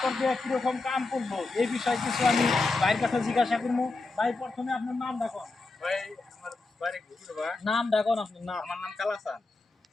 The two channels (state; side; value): quieter; right; 3.5 dB